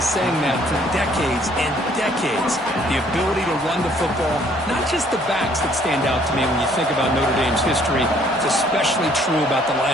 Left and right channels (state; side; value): normal; both; correlation 0.62